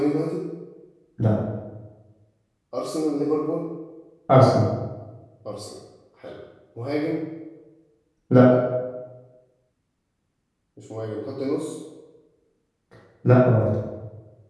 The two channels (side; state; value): both; identical; correlation 1.00